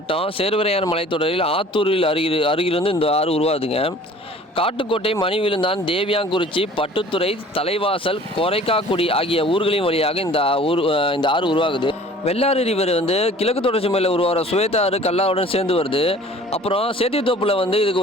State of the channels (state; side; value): normal; both; correlation 0.49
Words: சேர்வரையான் மலைத்தொடரில் ஆத்தூரில் அருகிலிருந்து இந்த ஆறு உருவாதுங்க. காட்டுக்கோட்டை, மணிவிழுந்தான், தேவியாங்குறிச்சி, பட்டுத்துறை, தலைவாசல், கொரைக்காக்குடி ஆகிய ஊர்களின் வழியாக இந்த ஆறு உருவாகுது. வெள்ளாறு ரிவர் கிழக்கு தொடர்ச்சி மலையில் உருவாகிற சுவேதா ஆறு கல்லாவுடன் சேர்ந்து வருது. அப்புறம் சேத்தித்தோப்பில் இதுக்கு